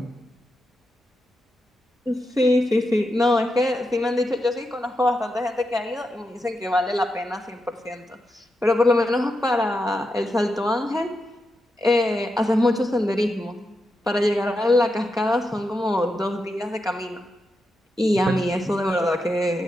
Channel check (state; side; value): normal; both; correlation 0.87